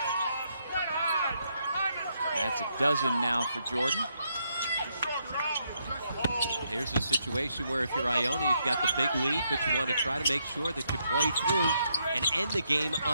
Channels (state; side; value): inverted; both; correlation -0.77